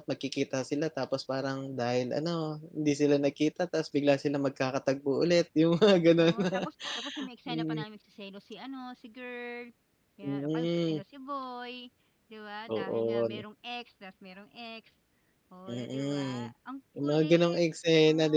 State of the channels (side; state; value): both; identical; correlation 1.00